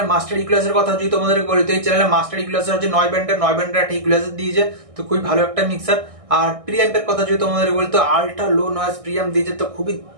মাস্টার ইকুয়ালাইজার কথা যদি তোমাদেরকে বলি, তো এই চ্যানেলের মাস্টার ইকুয়ালাইজার হচ্ছে 9 ব্যান্ডের একটা ইকুয়ালাইজার দিয়েছে। তো খুবই ভালো একটা মিক্সার। আর প্রিঅ্যাম্পের কথা যদি তোমাদেরকে বলি, তো আল্ট্রা লো নয়েজ প্রিঅ্যাম্প দিয়েছে। তো খুবই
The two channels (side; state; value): left; late; 1.6 ms